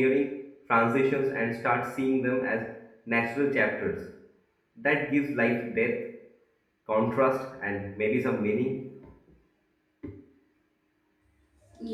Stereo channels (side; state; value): both; identical; correlation 1.00